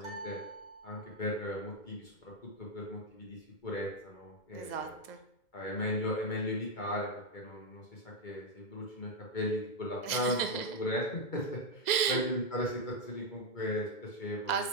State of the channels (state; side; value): late; right; 2.0 ms